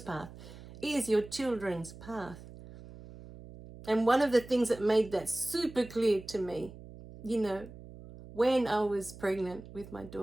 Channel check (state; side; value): noise; right; hum, 16 dB below the sound